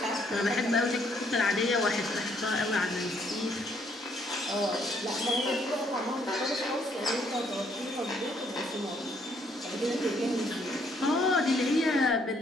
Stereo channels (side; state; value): both; normal; correlation 0.68